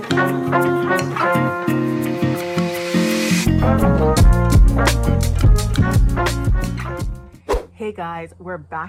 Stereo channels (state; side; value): identical; both; correlation 1.00